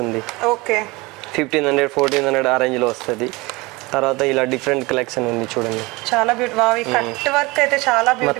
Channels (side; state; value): left; quieter; 23.5 dB